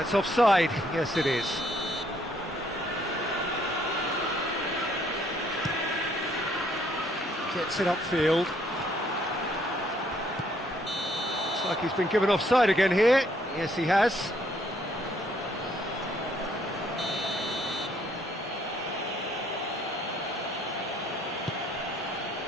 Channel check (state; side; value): normal; both; correlation 0.66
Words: offside. Yes, it is. Gets it upfield. Looks like he's been given offside again here. Yes, he has.